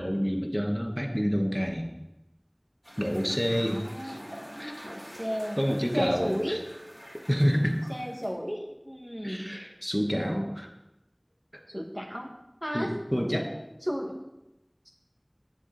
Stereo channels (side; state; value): both; identical; correlation 1.00